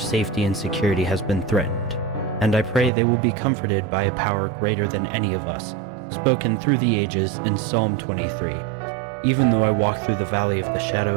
safety and security has been threatened, and I pray they will be comforted by a power greater than any of us, spoken through the ages in Psalm 23. Even though I walk through the valley of the shadow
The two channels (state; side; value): drops out; left; at 2.9 s